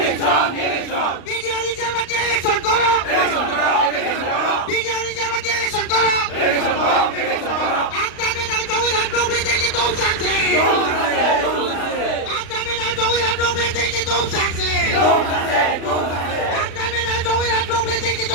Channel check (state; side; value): late; right; 36 ms